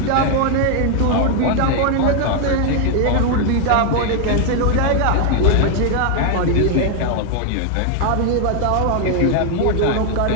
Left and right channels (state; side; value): different; both; correlation 0.00